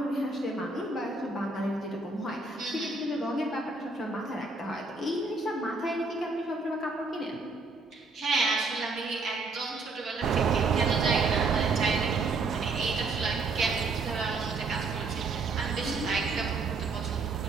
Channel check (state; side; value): quieter; left; 3.7 dB